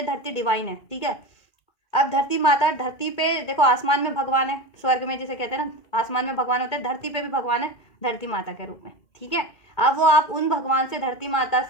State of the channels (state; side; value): late; right; 2.4 ms